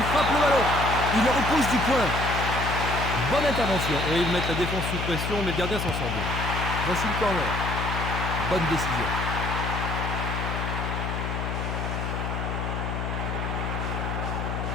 frappe le ballon. Il le repousse du point. Bonne intervention. Et ils mettent la défense sous pression, mais le gardien s'en sort bien. Voici le corner. Bonne décision.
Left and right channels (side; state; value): left; noise; hum, 3 dB below the sound